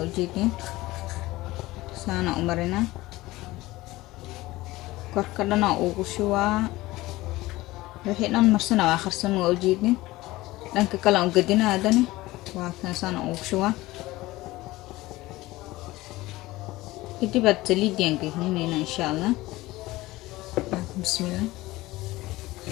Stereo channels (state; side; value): quieter; right; 18.7 dB